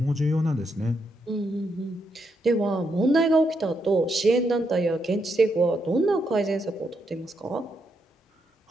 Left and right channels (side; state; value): both; normal; correlation 0.80